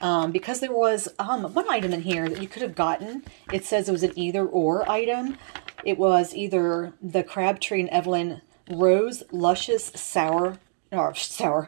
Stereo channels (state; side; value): silent; left; 62 dB below the other